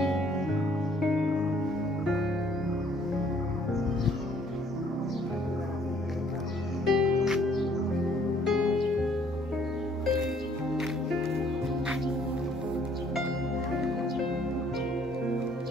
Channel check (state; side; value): normal; both; correlation 0.61